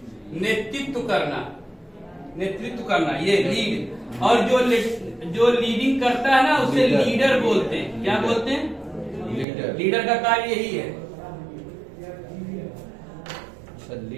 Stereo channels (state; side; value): drops out; left; at 9.5 s